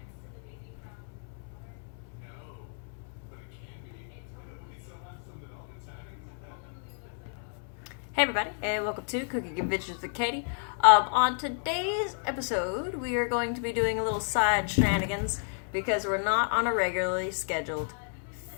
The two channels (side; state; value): right; silent; 57 dB below the other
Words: Hey everybody, and welcome to Cooking Adventures with Katie. On today's episode, we are going to be doing a little side shenanigans because we're not on a regularly scheduled